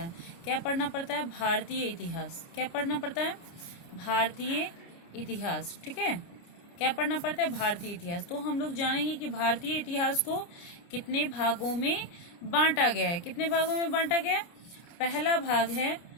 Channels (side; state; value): right; late; 29 ms